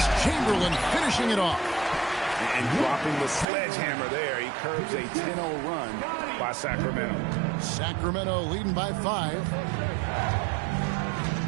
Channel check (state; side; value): drops out; left; at 3.5 s